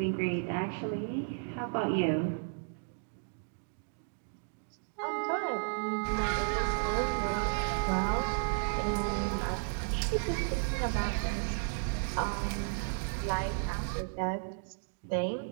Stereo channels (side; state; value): left; silent; digital silence